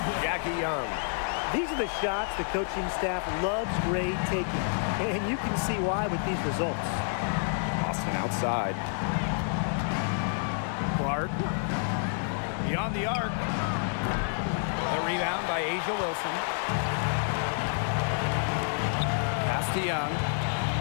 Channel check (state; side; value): silent; right; digital silence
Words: Jackie Young. These are the shots the coaching staff loves Gray taking, and you can see why with these results. Boston outside. Clark beyond the arc. The rebound by Asia Wilson. Pass to Young.